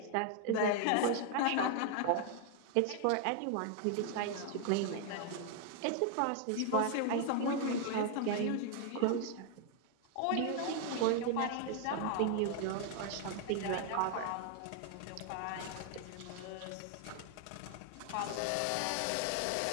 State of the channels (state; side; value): different; both; correlation 0.00